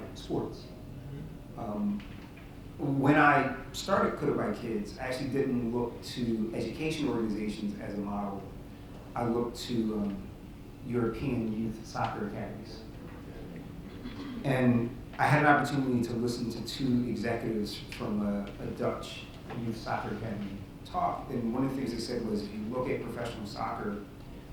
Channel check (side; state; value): both; identical; correlation 1.00